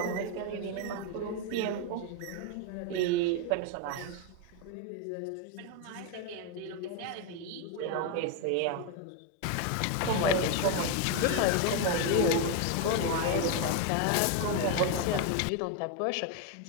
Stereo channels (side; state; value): both; different; correlation 0.02